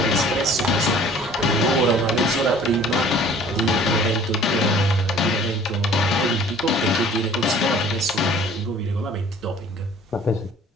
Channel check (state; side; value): normal; both; correlation 0.51